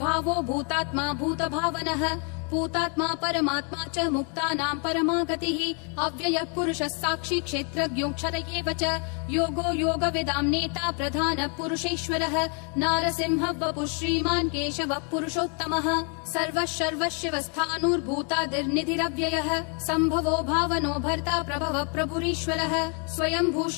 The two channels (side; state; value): right; quieter; 38.0 dB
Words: भूतात्मा भूतभावनः भूतात्मा परमात्मा च मुक्तानां परमा गतिः अव्ययः पुरुषः साक्षी क्षेत्रज्ञोऽक्षर एव च योगो योगविदां नेता प्रधानः पुरुषेश्वरः नारसिंहः वपुः श्रीमान् केशवः पुरुषोत्तमः सर्वः सर्वशिवस्थाणुर्भूतादिर्निधिरव्ययः सम्भवो भावनो भर्ता प्रभवः प्रभुरीश्वरः स्वयंभू